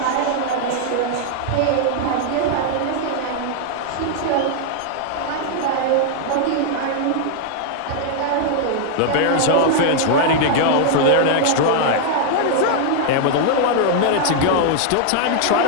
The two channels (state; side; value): different; both; correlation 0.00